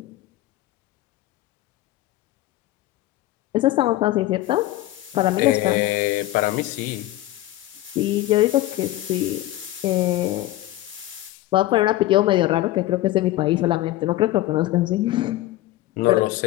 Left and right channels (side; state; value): right; quieter; 15.9 dB